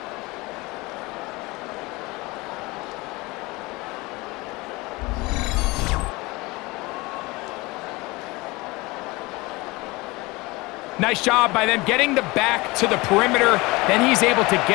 Nice job by them getting the back to the perimeter. Then he's able to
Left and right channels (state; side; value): quieter; right; 23.0 dB